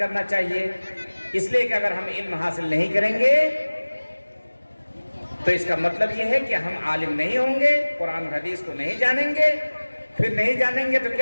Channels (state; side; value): inverted; both; correlation -1.00